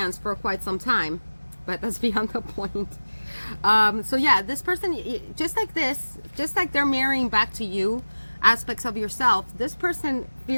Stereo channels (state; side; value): inverted; both; correlation -1.00